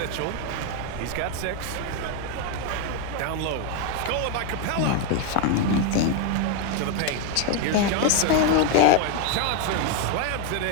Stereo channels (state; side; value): different; both; correlation 0.01